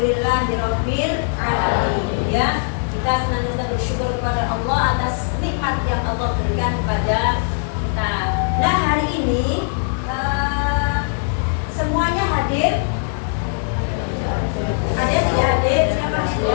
Alhamdulillahirabbil alamin. Ya, kita senantiasa bersyukur kepada Allah atas nikmat yang Allah berikan kepada kita. Nah, hari ini semuanya hadir. Ada yang tidak hadir? Siapa?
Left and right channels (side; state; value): right; silent; 61 dB below the other